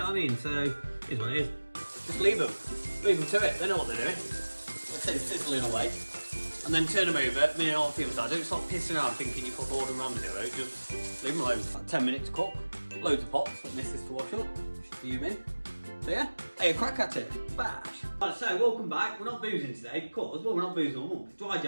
what I mean? So, here's what it is. Just leave them to it, they know what they're doing. Let's say sizzling away. And then turn them over, me and all people start. Don't stop pissing around thinking you put Gordon Ramsay out, just leave them alone. About 10 minutes to cook, loads of pots for missus to wash up, fuming. So yeah, hey, a crack at it, bash. Right, so welcome back. We're not boozing today because, well, we're not boozing all month. It's dry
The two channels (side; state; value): both; inverted; correlation -1.00